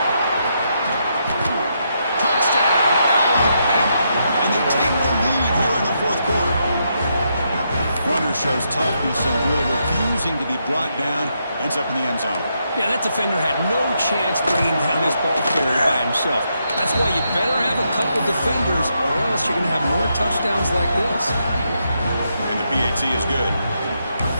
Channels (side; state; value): both; inverted; correlation -0.80